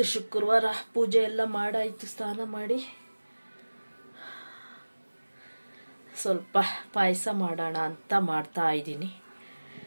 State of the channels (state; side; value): inverted; both; correlation -1.00